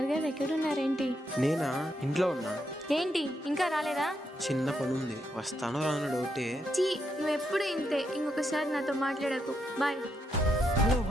ఎక్కడున్నారేంటి? నేనా? ఇంట్లో ఉన్నా. ఏంటి ఇంకా రాలేదా? చిన్న పని ఉంది, వస్తానో రాను డౌటే. నువ్వు ఎప్పుడు ఇంతే, ఇంకొకసారి నాతో మాట్లాడకు. Bye. Hello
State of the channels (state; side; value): normal; both; correlation 0.80